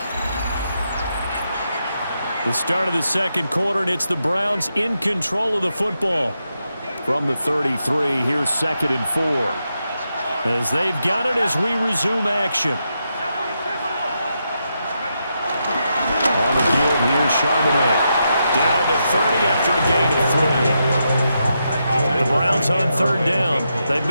The start of the second quarter, and it's the Browns in control of the football. From the 33, here's 2nd and 4. As they've got it as we resume action. On the give, here's Charbonnet. Down to 30 after a gain of 3. The Browns on 3rd down. They've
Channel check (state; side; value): inverted; both; correlation -0.84